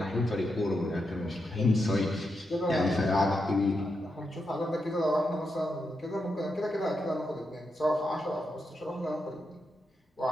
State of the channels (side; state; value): both; normal; correlation 0.85